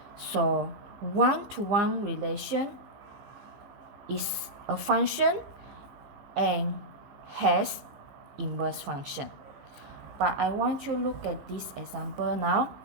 So one-to-one relation is a function and has inverse function. But I want you to look at this example now.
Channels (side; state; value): left; late; 15 ms